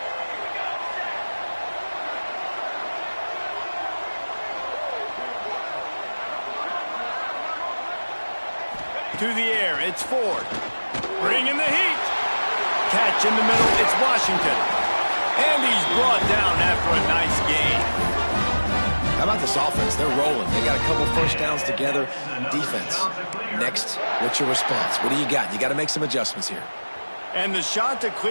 To the air, it's Ford. Bringing the heat. Catch in the middle, it's Washington. And he's brought down after a nice gain. How about this offense? They're rolling. They got a couple first downs together. Defense. Next, what's your response? What do you got? You got to make some adjustments here. And the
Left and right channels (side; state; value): both; inverted; correlation -1.00